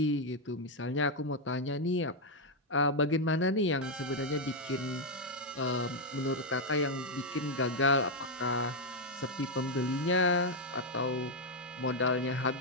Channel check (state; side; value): normal; both; correlation 0.01